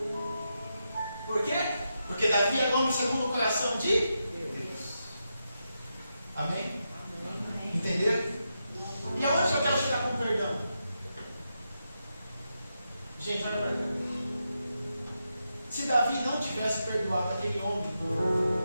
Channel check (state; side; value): inverted; both; correlation -0.86